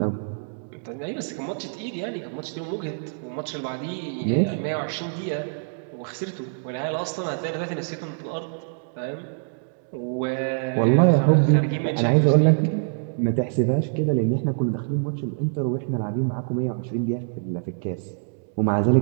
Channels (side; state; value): left; silent; digital silence